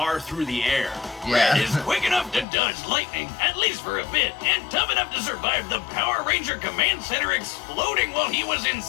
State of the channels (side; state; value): right; drops out; at 2.5 s